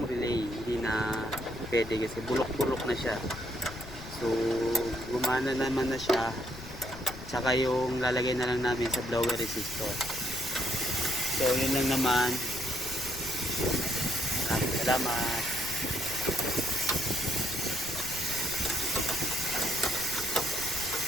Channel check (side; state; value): left; noise; rumble, 14 dB below the sound